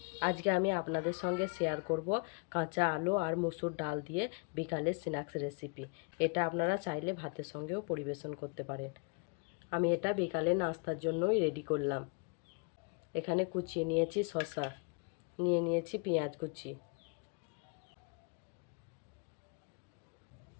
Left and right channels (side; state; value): right; quieter; 35.2 dB